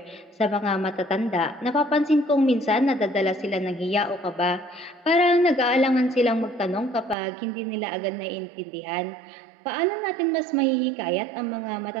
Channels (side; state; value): left; drops out; at 7.2 s